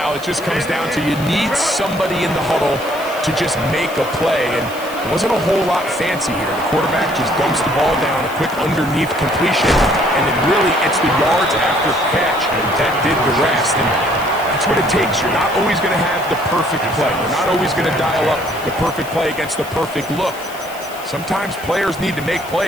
it just comes down to you need somebody in the huddle to just make a play, and it wasn't a whole lot fancy here. The quarterback just dumps the ball down, a quick underneath completion, and then really it's the yards after catch that did the rest. And that's what it takes. You're not always going to have the perfect play. You're not always going to dial up the perfect play against the perfect look. Sometimes players need to make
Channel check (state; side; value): noise; left; hiss, 17 dB below the sound